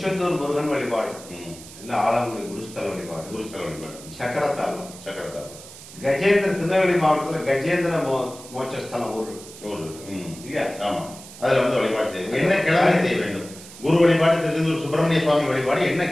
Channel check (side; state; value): right; noise; hiss, 17 dB below the sound